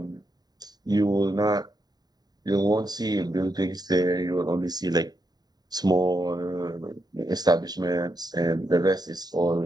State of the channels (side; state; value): left; late; 0.19 ms